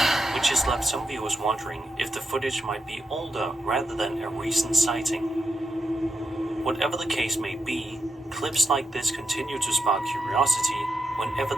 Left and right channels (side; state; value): both; normal; correlation 0.86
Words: which has left some viewers wondering if the footage might be older rather than a recent sighting. Whatever the case may be, clips like this continue to spark curiosity whenever